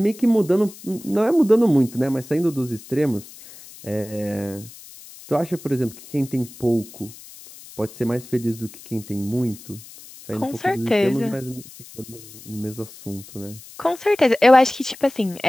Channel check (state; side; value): noise; left; hiss, 18 dB below the sound